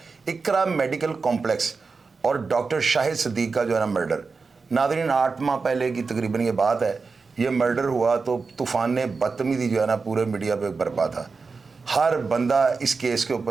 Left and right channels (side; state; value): left; quieter; 4.5 dB